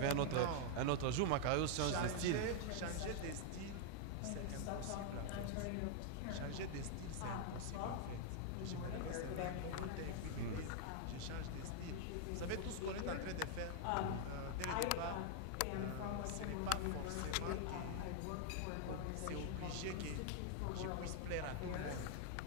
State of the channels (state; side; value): different; both; correlation 0.00